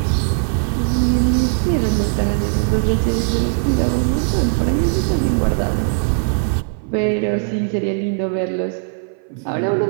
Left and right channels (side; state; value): left; silent; 56 dB below the other